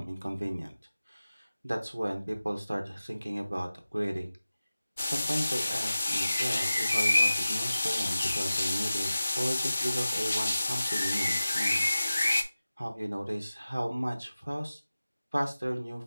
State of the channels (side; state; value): both; inverted; correlation -0.95